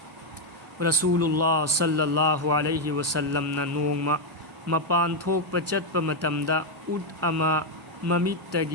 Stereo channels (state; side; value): normal; both; correlation 0.03